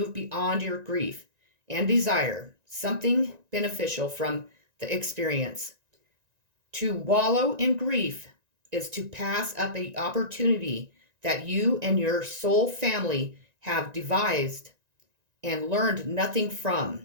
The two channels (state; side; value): late; left; 1.9 ms